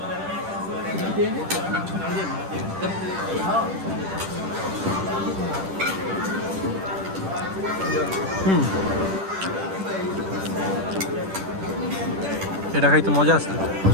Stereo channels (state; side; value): late; left; 10 ms